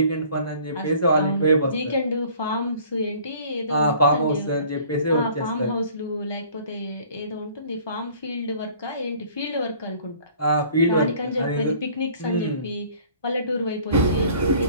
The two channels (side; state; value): both; inverted; correlation -0.53